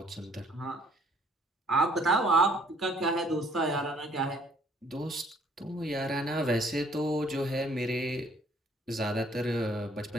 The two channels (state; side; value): normal; both; correlation 0.61